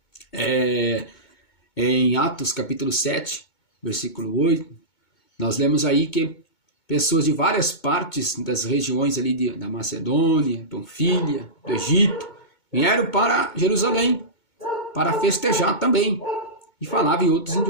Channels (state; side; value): late; right; 2.2 ms